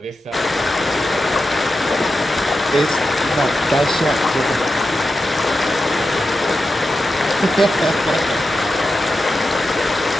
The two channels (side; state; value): both; normal; correlation 0.90